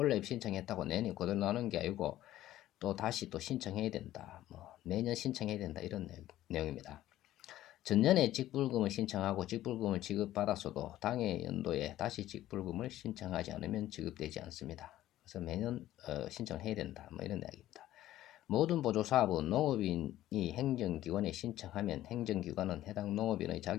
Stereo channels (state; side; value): quieter; right; 14.0 dB